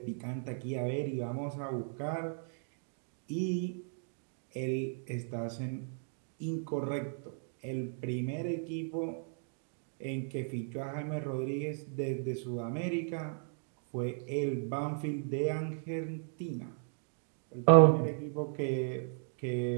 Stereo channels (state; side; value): silent; left; digital silence